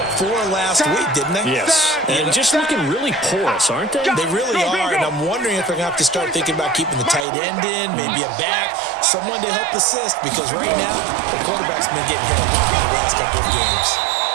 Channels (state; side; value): drops out; left; at 7.2 s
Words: 4 last week, didn't they? Yes, and just looking really porous, aren't they? They really are, and I'm wondering if they're going to have to start thinking about keeping the tight end in, maybe a back, someone to help assist, because right now, the quarterback's been getting hit a lot in the last couple of games.